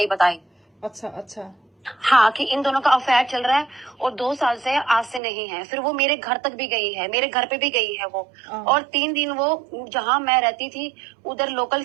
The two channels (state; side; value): drops out; left; at 5.2 s